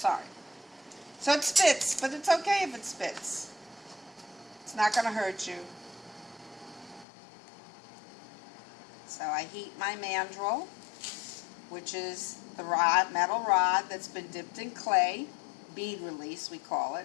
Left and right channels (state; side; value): drops out; right; at 7.1 s